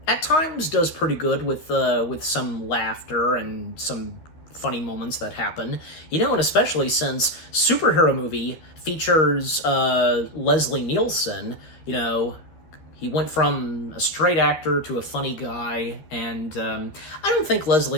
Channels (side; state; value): right; late; 13 ms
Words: at times does pretty good with some laughter and some funny moments that happen, and especially since superhero movie features Leslie Nielsen, he went from a straight actor to a funny guy, and I don't think